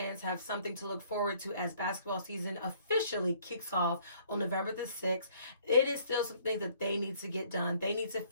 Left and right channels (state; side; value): inverted; both; correlation -0.61